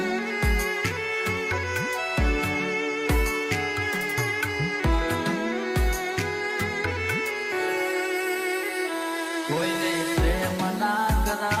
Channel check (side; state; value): both; identical; correlation 1.00